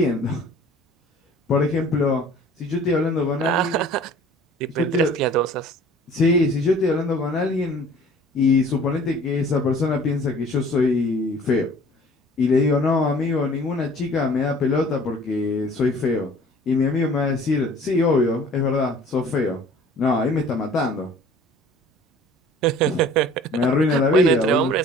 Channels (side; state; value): both; normal; correlation 0.50